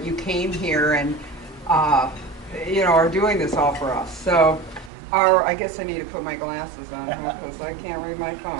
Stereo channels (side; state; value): left; drops out; at 4.9 s